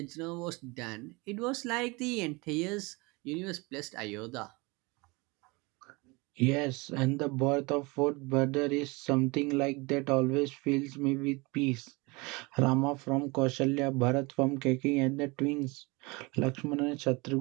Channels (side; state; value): left; quieter; 25.9 dB